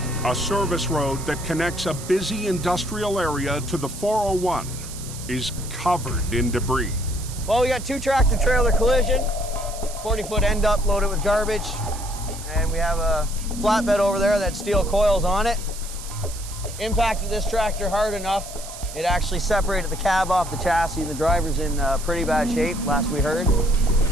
a service road that connects a busy industrial area to the 401 is covered in debris. Well, we got 2 tractor-trailer collision, 40-foot end up loaded with garbage, and we have a flatbed over there that steel coils on it. Impacted this tractor hard enough, it actually separated the cab off the chassis. The driver's in pretty bad shape, last we heard.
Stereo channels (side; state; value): right; noise; hiss, 13 dB below the sound